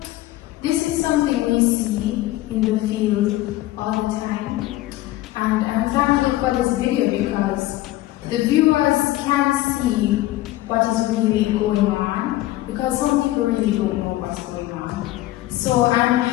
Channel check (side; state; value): right; quieter; 16.3 dB